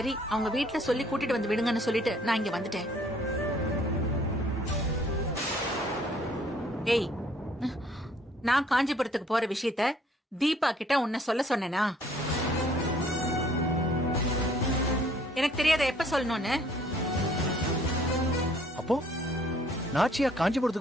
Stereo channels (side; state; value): both; normal; correlation 0.60